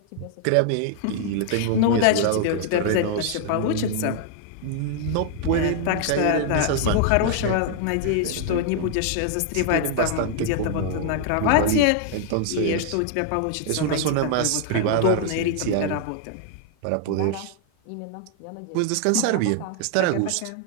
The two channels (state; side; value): different; both; correlation 0.00